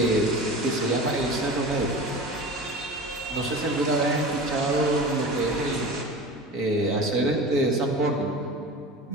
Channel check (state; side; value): normal; both; correlation 0.33